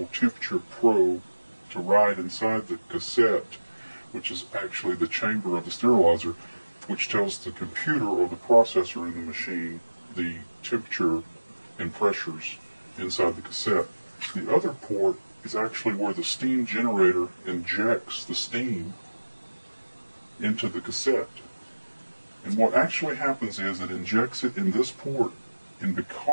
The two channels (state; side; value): inverted; both; correlation -1.00